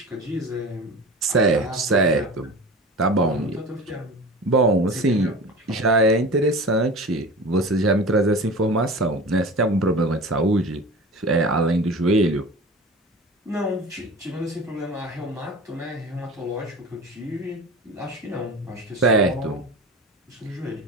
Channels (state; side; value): normal; both; correlation 0.35